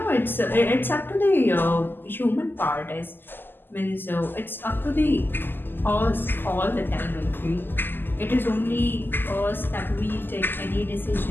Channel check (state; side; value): late; right; 0.094 ms